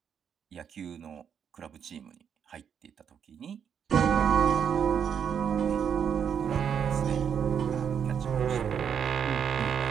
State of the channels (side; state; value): left; quieter; 7.8 dB